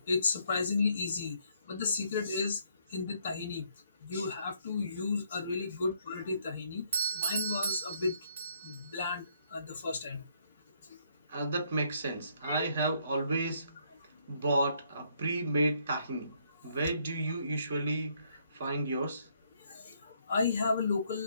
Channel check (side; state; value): both; inverted; correlation -0.70